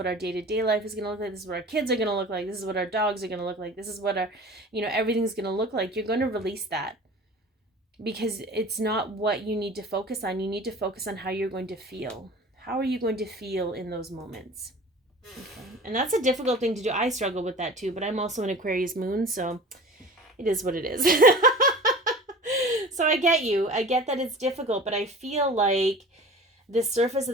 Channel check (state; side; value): normal; both; correlation 0.40